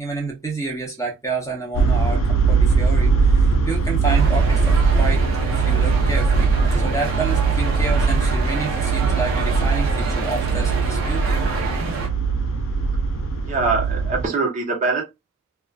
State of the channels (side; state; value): left; quieter; 4.1 dB